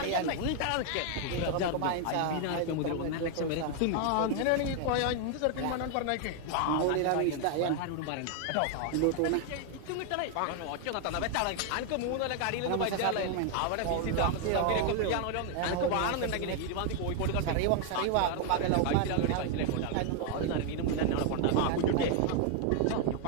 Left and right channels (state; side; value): different; both; correlation 0.00